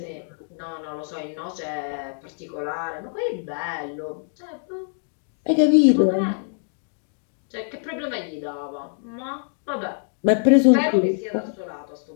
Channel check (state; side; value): silent; right; digital silence